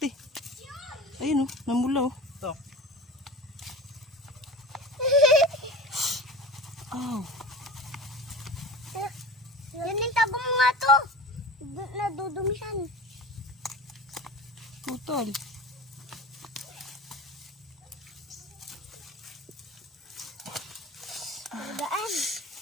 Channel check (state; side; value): normal; both; correlation 0.34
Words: eh. Ayun oh. Namula oh. Ito. Aw. Yan yung tabong mo nga to. Nadudumisan. Putol. Daan.